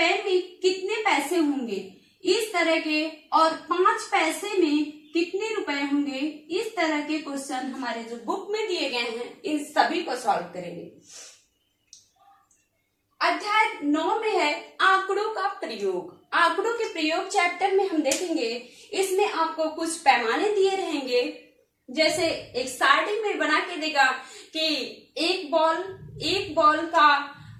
में कितने पैसे होंगे, इस तरह के, और 5 पैसे में कितने रुपए होंगे, इस तरह के क्वेश्चन हमारे जो बुक में दिए गए हैं, इन सभी को सॉल्व करेंगे। अध्याय 9 में है आंकड़ों का प्रयोग। आंकड़ों के प्रयोग चैप्टर में हम देखेंगे, इसमें आपको कुछ पैमाने दिए रहेंगे। जैसे एक स्टार्टिंग में बना के देगा कि एक बॉल का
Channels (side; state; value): both; identical; correlation 1.00